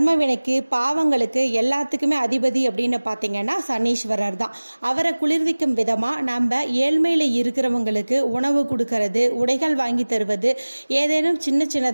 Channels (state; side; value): inverted; both; correlation -1.00